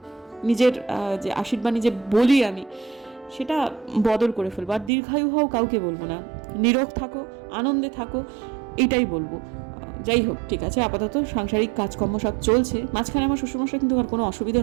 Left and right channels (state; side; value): drops out; left; at 4.9 s